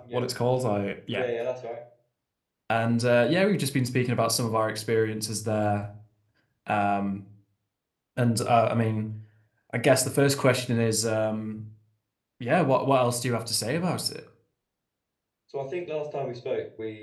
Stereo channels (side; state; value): both; identical; correlation 1.00